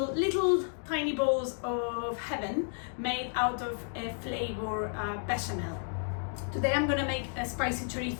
tiny balls of heaven made out of a flavor bechamel. Today I'm gonna make a spicy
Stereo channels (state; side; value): silent; right; 56 dB below the other